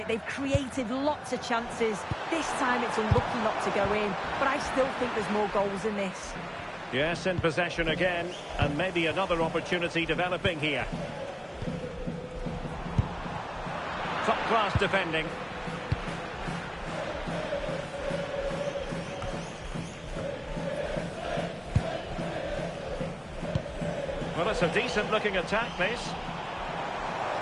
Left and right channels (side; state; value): both; identical; correlation 1.00